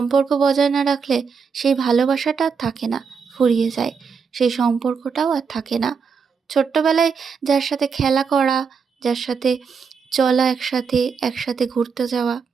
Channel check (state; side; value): quieter; left; 5.8 dB